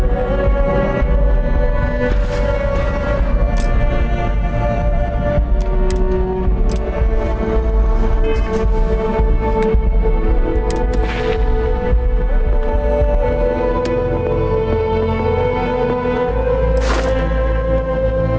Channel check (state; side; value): identical; both; correlation 1.00